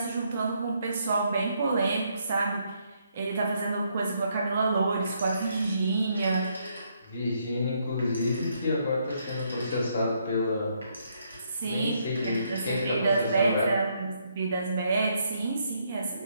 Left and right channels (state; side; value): inverted; both; correlation -0.74